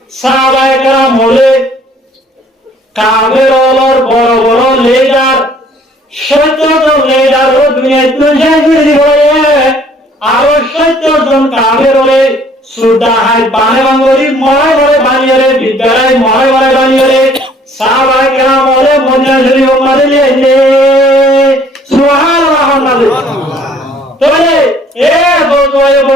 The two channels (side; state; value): both; normal; correlation 0.58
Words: সাহাবায়ে কেরাম হলে কাবের অলর বড় বড় লিডার 70 জন লিডার ও দুনিয়ায় তুলজাই করে দিব আরো 70 জন কাবের হলে সুদা হাই বানে বাঙ্গরি মরে মরে বানিয়ে বিদ্যালয় মরে মরে বানিয়ে সাহাবায়ে কেরাম হলে মদিনা শরীফ মারিলে সুবহানাল্লাহ তাহলে এ বজবায়ে